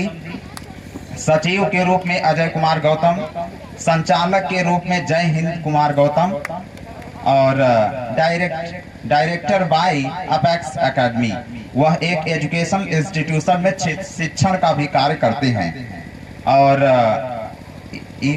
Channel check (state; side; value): identical; both; correlation 1.00